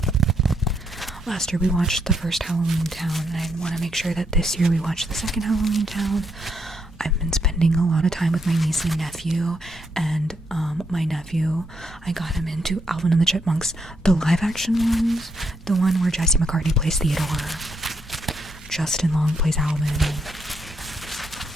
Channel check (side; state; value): both; normal; correlation 0.77